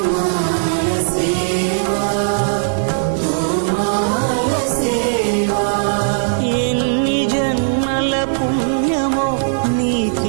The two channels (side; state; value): left; silent; digital silence